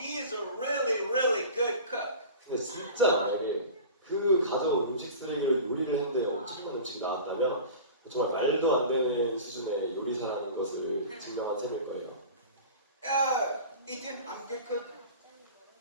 is a really, really good cook. 근데 진짜 만약에 그 가져온 음식 쓰레기를 요리를 했는데 엄청난 음식이 나왔다면 정말 말도 안 되는 수준의 요리사라는 것을 증명한 셈일 거예요. Ethan, I'm a good cook.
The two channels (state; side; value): inverted; both; correlation -0.37